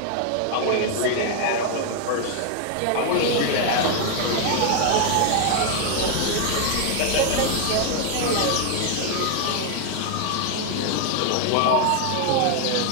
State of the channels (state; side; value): different; both; correlation 0.00